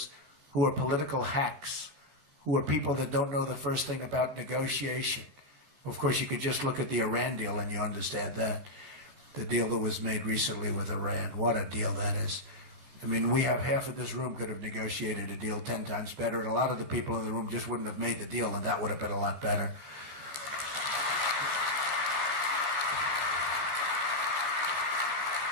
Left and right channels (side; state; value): left; late; 14 ms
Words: who are political hacks, who are people that don't know the first thing about negotiation. Of course, you could just look at the Iran deal and you understand that. The deal that was made recently with Iran. What a deal that is. I mean, we have half of this room could have negotiated a deal 10 times better, and a lot of the people in the room just wouldn't have made the deal, and that would have been a lot better.